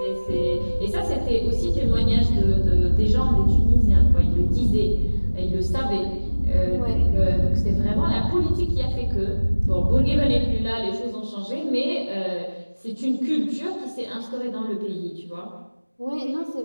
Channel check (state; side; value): inverted; both; correlation -1.00